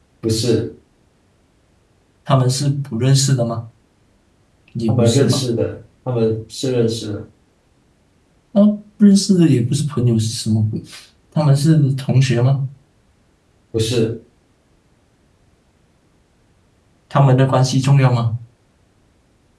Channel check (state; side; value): identical; both; correlation 1.00